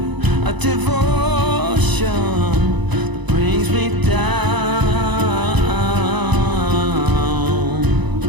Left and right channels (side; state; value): left; late; 1.0 ms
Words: of devotion that brings me down.